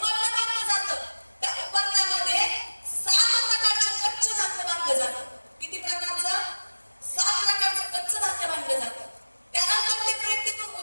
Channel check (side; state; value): both; inverted; correlation -1.00